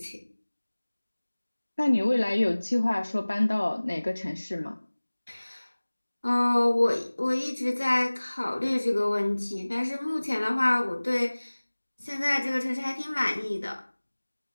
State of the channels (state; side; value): inverted; both; correlation -1.00